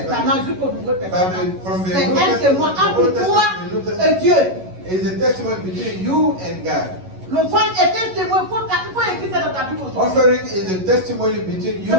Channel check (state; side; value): late; left; 11 ms